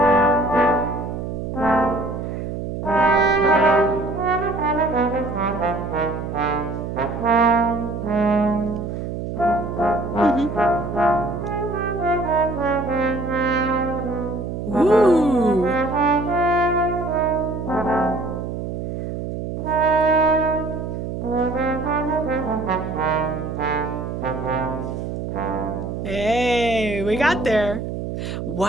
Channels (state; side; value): noise; right; hum, 5 dB below the sound